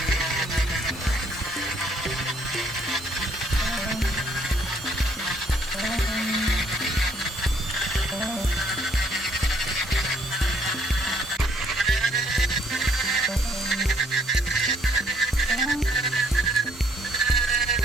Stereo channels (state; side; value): normal; both; correlation 0.66